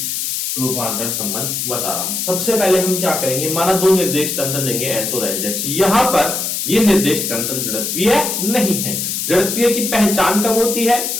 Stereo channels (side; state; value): left; noise; hiss, 2 dB below the sound